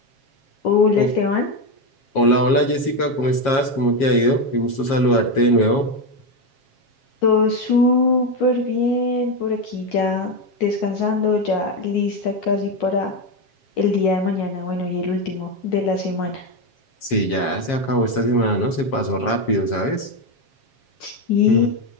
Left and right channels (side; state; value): right; late; 7.4 ms